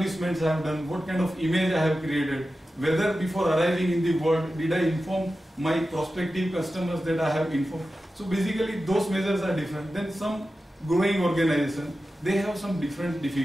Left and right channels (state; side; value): normal; both; correlation 0.93